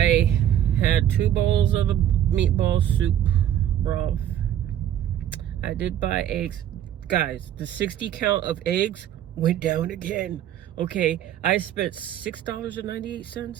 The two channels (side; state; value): left; quieter; 11.1 dB